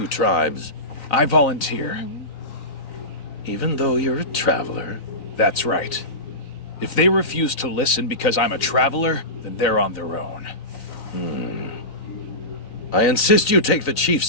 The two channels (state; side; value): late; right; 3.9 ms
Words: tribes? I volunteer. Even though you're a traveler? That's right. If they refuse to listen because I'm a traveler, then they're on their own. I insist you take the chief's